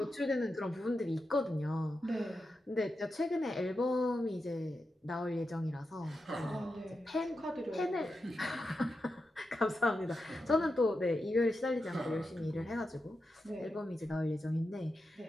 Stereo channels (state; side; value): normal; both; correlation 0.89